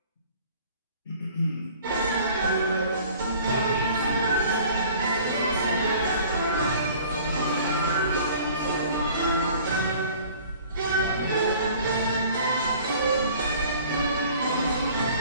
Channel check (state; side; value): inverted; both; correlation -0.50